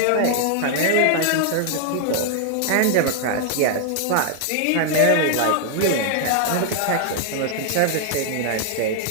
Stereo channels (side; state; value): both; different; correlation 0.00